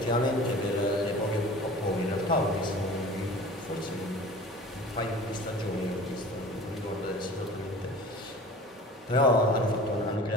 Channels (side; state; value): both; normal; correlation 0.41